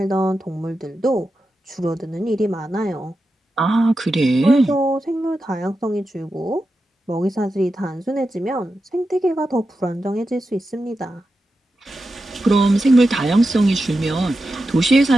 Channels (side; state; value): both; normal; correlation 0.90